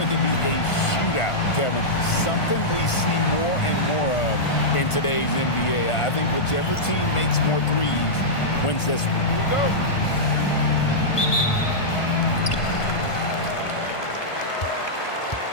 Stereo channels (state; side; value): late; right; 1.5 ms